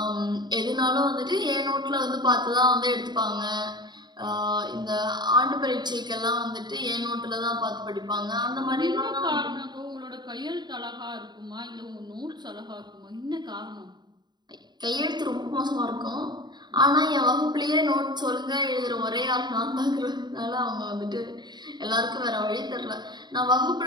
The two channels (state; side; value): late; left; 0.21 ms